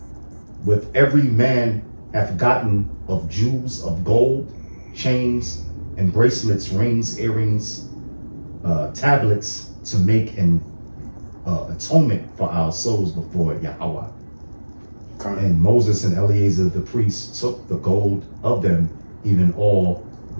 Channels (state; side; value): inverted; both; correlation -1.00